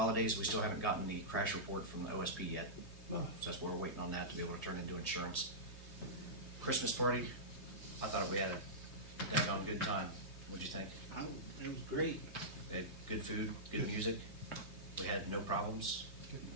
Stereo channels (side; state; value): right; late; 3.2 ms